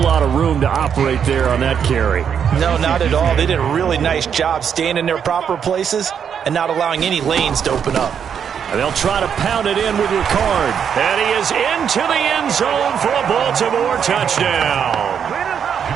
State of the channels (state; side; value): quieter; left; 7.8 dB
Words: lot of room to operate there on that carry. No, not at all. They did a really nice job staying in their proper places and not allowing any lanes to open up. And they'll try to pound it in with Ricard. And he is into the end zone for a Baltimore touchdown.